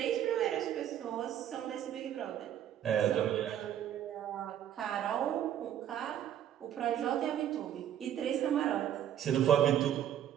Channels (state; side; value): quieter; left; 10.5 dB